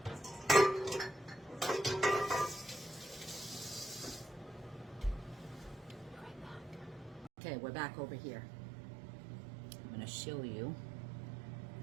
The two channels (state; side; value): drops out; left; at 7.3 s